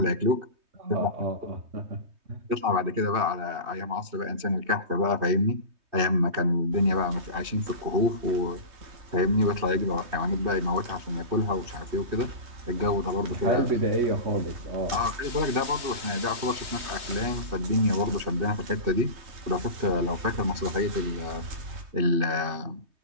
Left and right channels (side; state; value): left; late; 3.2 ms